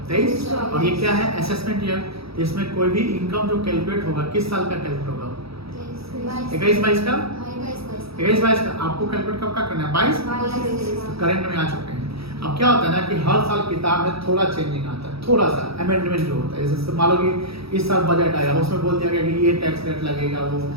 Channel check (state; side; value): late; left; 0.77 ms